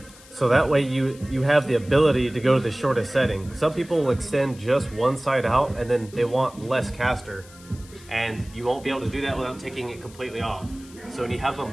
So that way you have the ability to go to the shortest setting. Some people will extend just one side out, and then they want less caster. And you won't be able to do that without taking it completely off. So when you have them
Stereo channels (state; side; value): noise; left; hiss, 22 dB below the sound